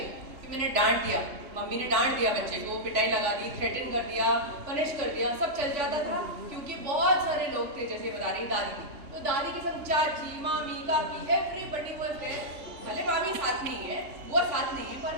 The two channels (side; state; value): left; late; 3.5 ms